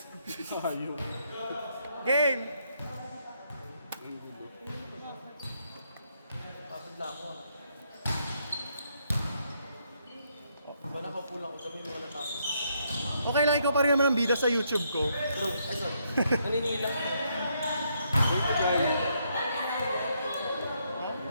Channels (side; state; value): both; inverted; correlation -0.75